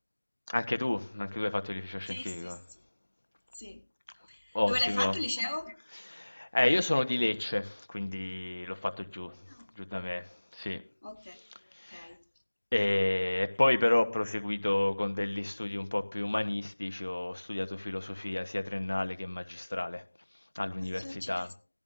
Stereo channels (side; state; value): both; inverted; correlation -1.00